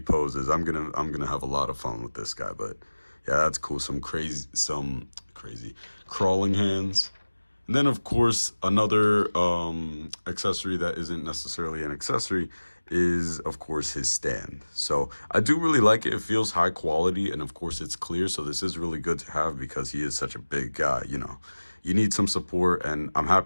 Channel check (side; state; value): both; inverted; correlation -1.00